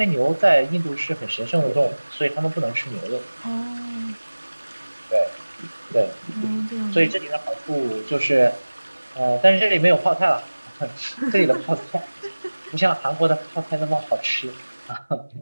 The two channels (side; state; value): both; inverted; correlation -1.00